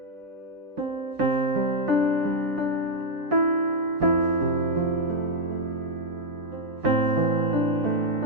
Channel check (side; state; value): left; late; 4.0 ms